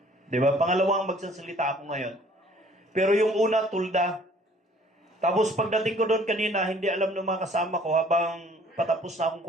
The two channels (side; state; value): both; normal; correlation 0.56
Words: Diba? Pangalawang magsasalita ako ngayon. Pero yung una, tulda. Tapos pagdating ko doon kanina, hindi alam ng mga kasama ko habang patapos na akong